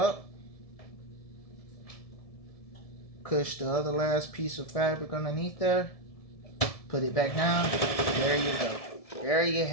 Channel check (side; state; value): right; late; 1.7 ms